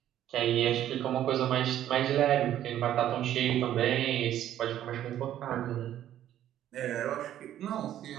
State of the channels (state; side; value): quieter; left; 11.8 dB